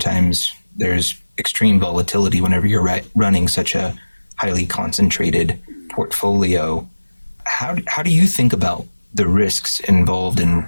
there's extreme volatility whenever you're running such a highly concentrated portfolio. How do you think about the risks involved in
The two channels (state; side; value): inverted; both; correlation -1.00